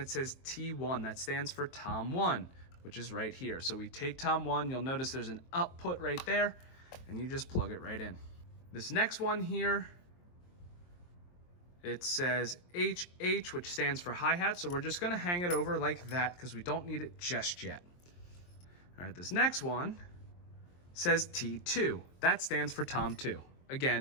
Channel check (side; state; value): right; late; 23 ms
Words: says T1. That stands for Tom 1, which is right here. So we take Tom 1, you'll notice there's an output right there, and you just plug it right in. This next one here, it says HH, which stands for hi-hat, so we're just gonna hang it over like that because we don't need it just yet. All right, this next one says T2. That stands for Tom 2.